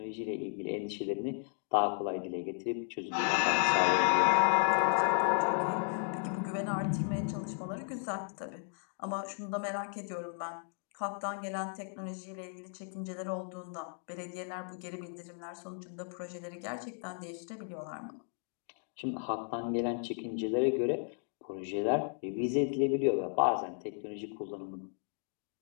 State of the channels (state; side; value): silent; right; 55 dB below the other